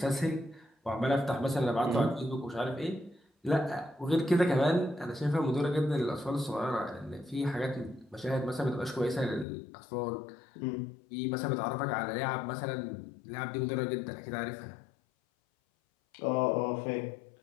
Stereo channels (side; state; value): right; drops out; at 9.5 s